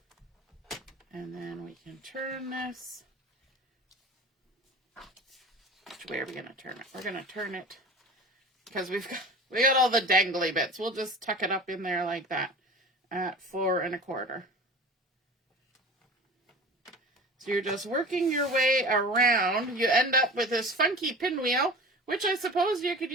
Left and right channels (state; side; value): normal; both; correlation 0.38